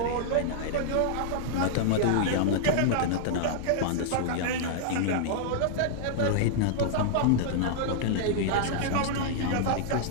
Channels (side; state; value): both; different; correlation -0.01